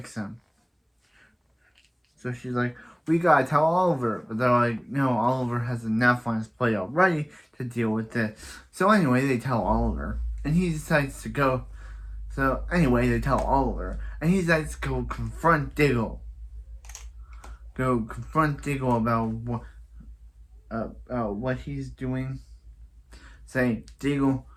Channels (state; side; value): identical; both; correlation 1.00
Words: him. So she's like, we gotta tell Oliver. But they're like, no, Oliver has enough on his plate already to deal with this. So anyway, they tell Oliver. And he decides to go. So anyway, they tell Oliver. And he decides to go confront Diggle. About what he's doing. Say, Diggle,